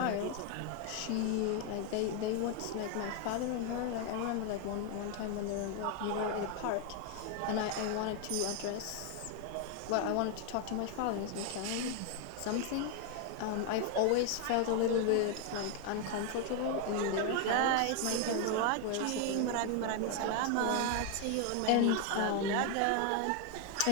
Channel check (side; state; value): both; different; correlation 0.01